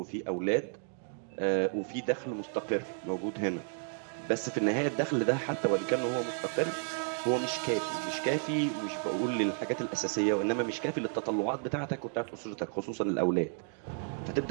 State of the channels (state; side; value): silent; left; 56 dB below the other